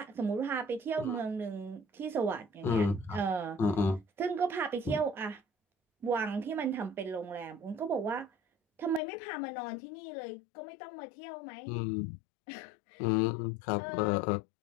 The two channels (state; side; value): drops out; right; at 9.0 s